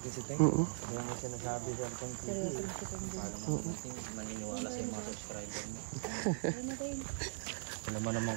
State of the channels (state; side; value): silent; left; digital silence